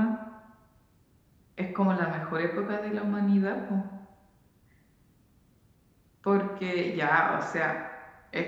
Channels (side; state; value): both; identical; correlation 1.00